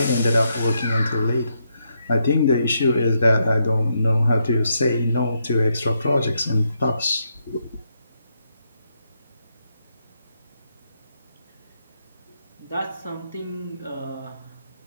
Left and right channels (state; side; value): inverted; both; correlation -0.79